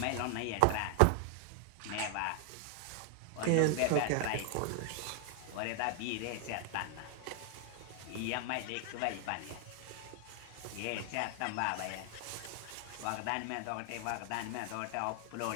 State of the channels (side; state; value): both; different; correlation 0.00